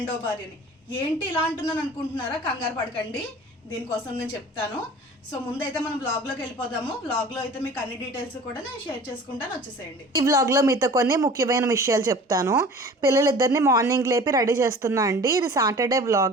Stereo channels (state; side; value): normal; both; correlation 0.43